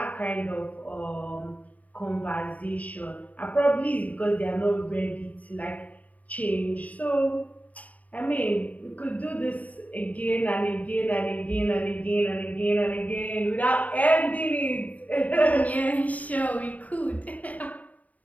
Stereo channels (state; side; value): late; right; 0.072 ms